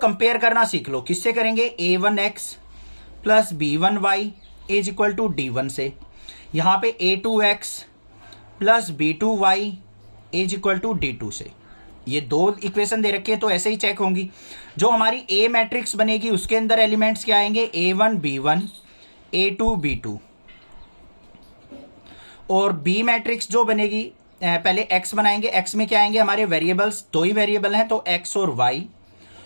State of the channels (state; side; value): inverted; both; correlation -1.00